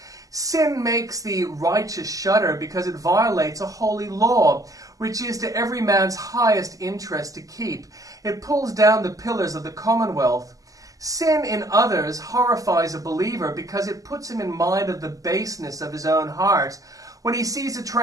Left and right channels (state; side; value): late; left; 0.17 ms